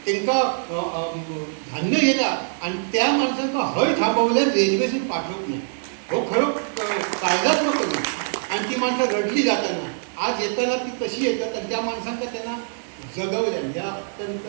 त्यांना धान्य गेला आणि त्या माणसांना हय थांबवल्या रेल्वेतून पाठवत नाही. हो खरं कायदात्मक आणि ती माणसं रडली जाताना आज येताना ती कशी येतात आणि त्या माणसांना त्यांना जगवल्या या अत्यंत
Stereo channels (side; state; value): left; silent; digital silence